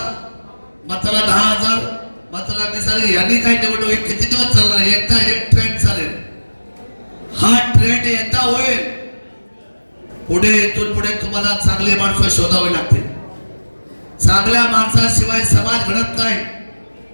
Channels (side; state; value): both; inverted; correlation -1.00